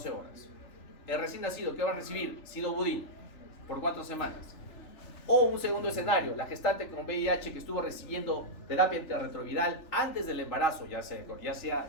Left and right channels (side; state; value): right; late; 3.4 ms